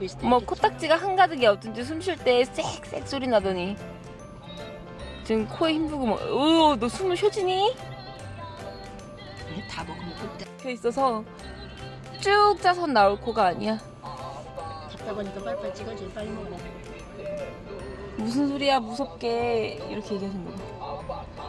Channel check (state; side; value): identical; both; correlation 1.00